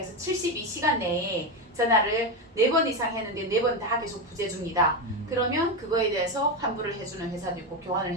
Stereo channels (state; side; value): normal; both; correlation 0.13